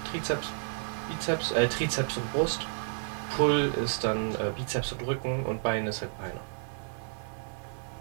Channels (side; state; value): left; silent; digital silence